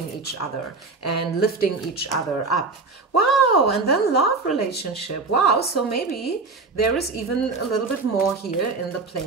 each other and lifting each other up. Wow, and then love relationship. Wow, so maybe there is even a little bit more here in the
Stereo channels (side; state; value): left; quieter; 3.9 dB